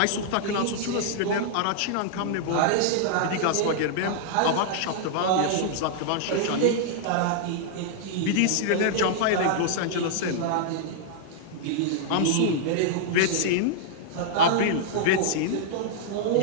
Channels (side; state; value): both; different; correlation -0.01